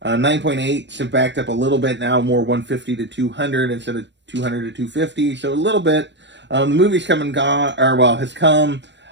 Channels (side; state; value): left; late; 0.52 ms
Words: 9.8 have backed up a little bit now, more $150 to $200 instead of $200 to $250. So a little bit. The movie's come and gone, has come.